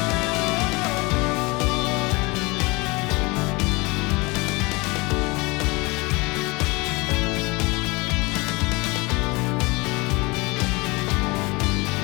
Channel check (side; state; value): right; quieter; 25.3 dB